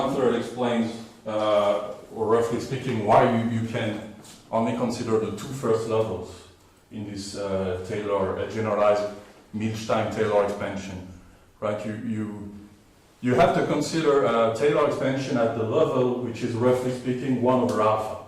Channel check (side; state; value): both; identical; correlation 1.00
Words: explains, or roughly speaking, why you can only consider the 2 first levels in this Taylor, generalized Milstein-Taylor expansion, right? You have to consider a Taylor expansion at the level which is roughly speaking 1/alpha.